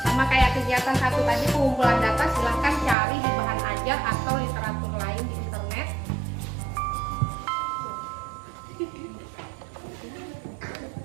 sama kayak kegiatan satu tadi, pengumpulan data silahkan cari di bahan ajar atau literatur lain di internet.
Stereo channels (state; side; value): drops out; left; at 3.0 s